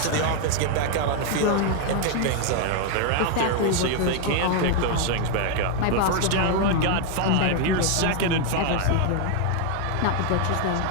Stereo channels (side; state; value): both; different; correlation 0.00